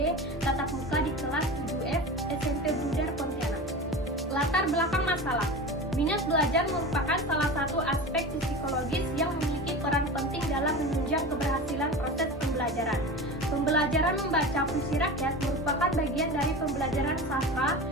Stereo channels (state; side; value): normal; both; correlation 0.30